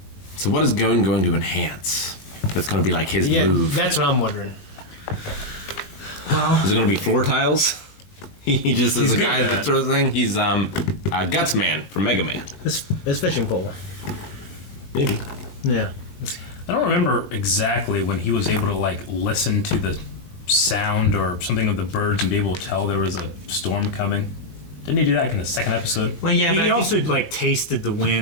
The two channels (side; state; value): right; late; 20 ms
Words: So what is Gon going to enhance? that's going to be like his Yeah, move? that's what I'm wondering. Is it going to be floor tiles? He just is He's a good guy at that that. throws thing. He's Guts Man from Mega Man. His fishing pole. Maybe. Yeah. I don't remember exactly when he was able to like listen to the sound or something of the birds and be able to tell there was a storm coming. Didn't he do that in the second episode? Well, yeah, but I He think- also like tasted the